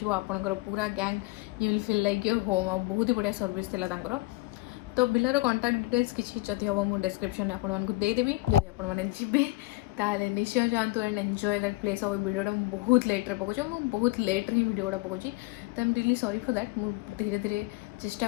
आपनकर पूरा gang you will feel like your home और बहुत ही बढ़िया सर्विस थिला तांकर तो बिलार कॉन्टाक्ट डिटेल्स किसी जदि हम मुझे डिस्क्रिप्शन में आपको देदेवी जब आपे ताले निश्चय जातु एंड एंजॉय दैट प्लेस और वीडियोटा बहुत लेट्रे पकाऊँ बहुत लेट्रे ही वीडियोटा पकाऊँ तो I am really sorry for that मुझे धीरे धीरे चेष्टा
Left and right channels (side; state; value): right; quieter; 20.7 dB